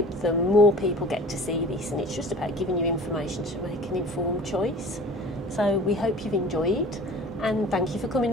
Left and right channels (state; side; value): normal; both; correlation 0.43